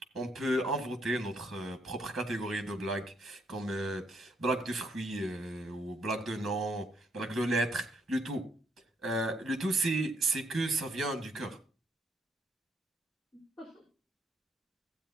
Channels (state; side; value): normal; both; correlation 0.72